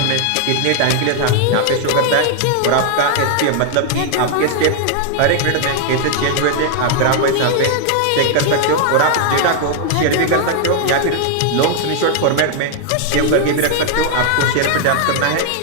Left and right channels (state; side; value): different; both; correlation 0.00